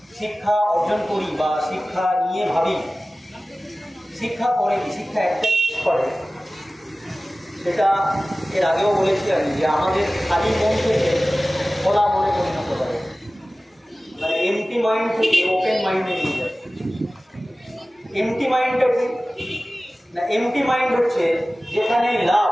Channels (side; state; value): both; normal; correlation 0.97